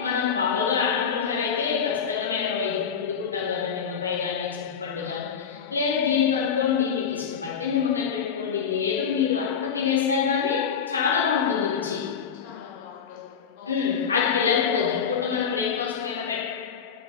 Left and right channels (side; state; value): right; quieter; 6.9 dB